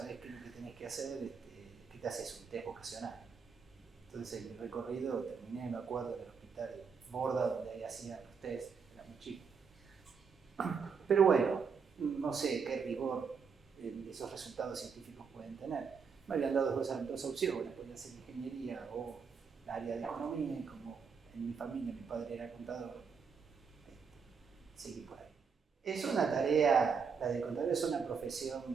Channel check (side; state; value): left; quieter; 5.9 dB